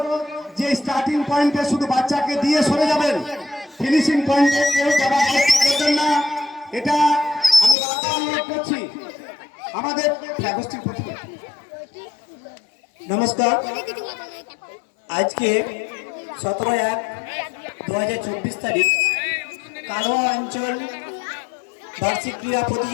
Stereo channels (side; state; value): right; drops out; at 7.8 s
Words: যে স্টার্টিং পয়েন্টে শুধু বাচ্চাকে দিয়ে সরে যাবেন, ফিনিশিং পয়েন্টে কেউ যাওয়ার চেষ্টা করবেন না। এটা আমি বারবার অনুরোধ করছি আমাদের গোষ্ঠীর প্রতি। নমস্কার। আজকে 17/1/2024 তারিখ কালোয়া অঞ্চল বার্ষিক ক্রীড়া